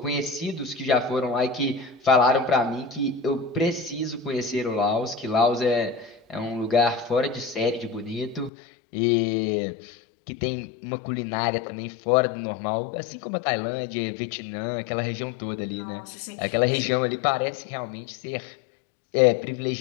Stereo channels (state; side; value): drops out; right; at 8.5 s